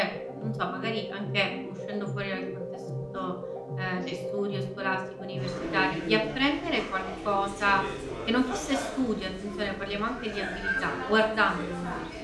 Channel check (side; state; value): both; identical; correlation 1.00